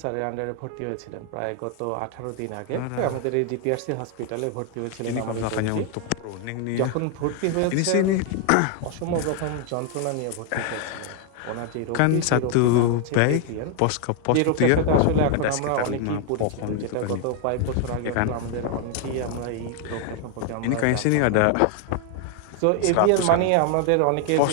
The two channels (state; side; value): different; both; correlation 0.01